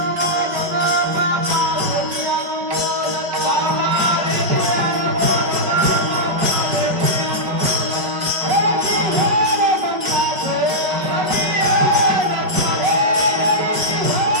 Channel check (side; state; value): left; late; 5.4 ms